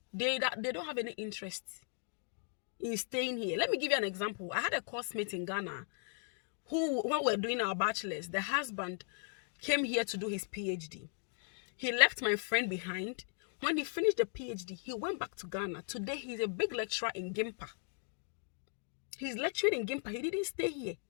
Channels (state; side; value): silent; right; 53 dB below the other